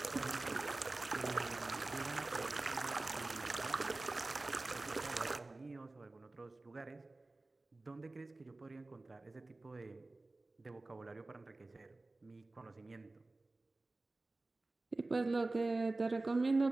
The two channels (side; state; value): left; quieter; 3.1 dB